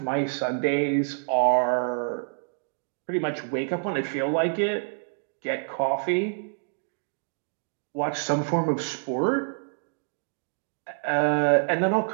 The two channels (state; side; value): silent; left; digital silence